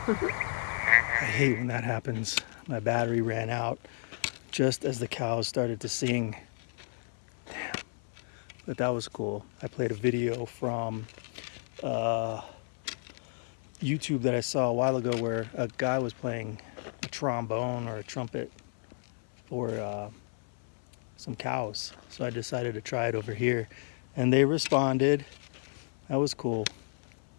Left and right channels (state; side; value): silent; right; 56 dB below the other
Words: I hate when that happens. My battery ran out just as the cows started to sing. Damn. But that was cool. I played a video from YouTube that I saw a while ago where a guy was playing a trombone or a trumpet for some cows. So I decided to try it over here. And they responded. That was cool.